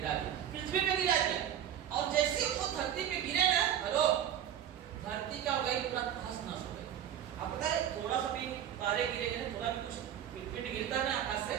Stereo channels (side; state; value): left; quieter; 10.1 dB